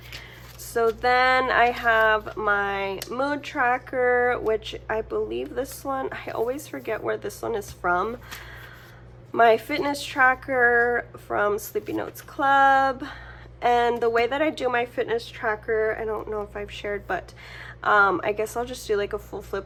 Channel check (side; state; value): both; identical; correlation 1.00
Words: So then I have my mood tracker, which I believe this one, I always forget where this one is from. My fitness tracker from slepynotesclub. And the way that I do my fitness tracker, I don't know if I've shared, but I guess I'll just do like a full